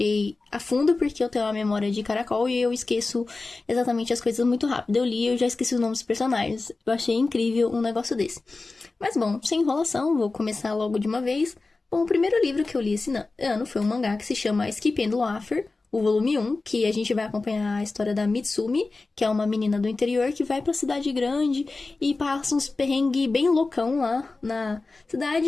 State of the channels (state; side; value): quieter; right; 3.6 dB